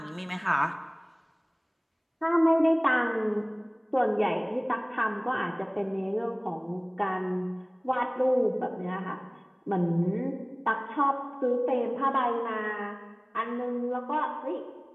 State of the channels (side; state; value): both; identical; correlation 1.00